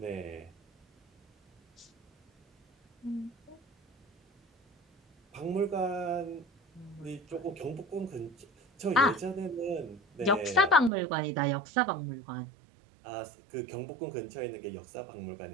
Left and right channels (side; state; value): left; drops out; at 10.9 s